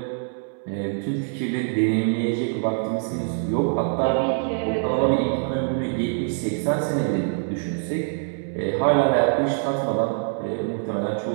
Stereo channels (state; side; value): silent; left; 62 dB below the other